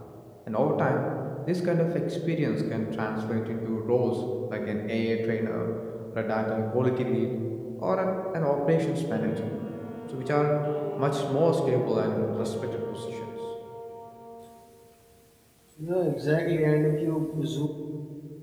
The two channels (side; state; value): both; identical; correlation 1.00